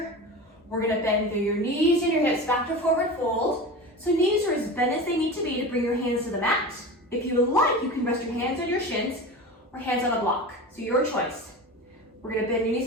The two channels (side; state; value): both; normal; correlation 0.30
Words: We're gonna bend through your knees and your hips back to forward fold. So knees are as bent as they need to be to bring your hands to the mat. If you would like, you can rest your hands on your shins or hands on a block, so your choice. We're gonna bend your knees